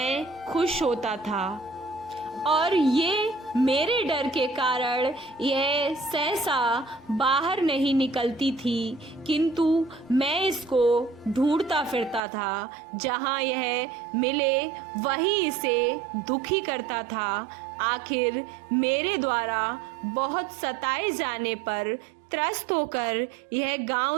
खुश होता था, और ये मेरे डर के कारण यह सहसा बाहर नहीं निकलती थी, किंतु मैं इसको ढूंढता फिरता था। जहाँ यह मिले वहीं इसे दुखी करता था। आखिर मेरे द्वारा बहुत सताए जाने पर त्रस्त होकर यह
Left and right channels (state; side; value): drops out; left; at 12.2 s